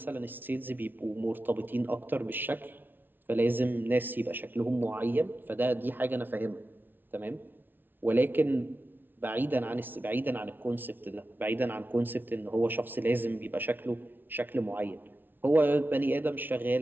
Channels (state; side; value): late; left; 0.094 ms